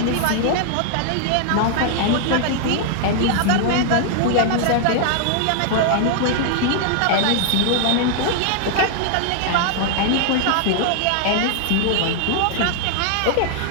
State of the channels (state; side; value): different; both; correlation 0.00